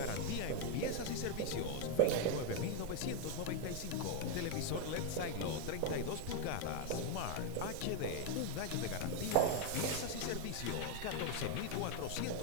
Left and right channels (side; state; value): both; different; correlation 0.01